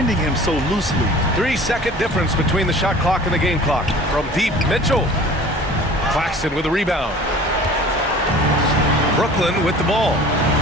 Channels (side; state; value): both; normal; correlation 0.45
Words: him so loosely. 3-second difference between the shot clock and the game clock. From deep, Mitchell. Claxton with a rebound. Brooklyn with the ball.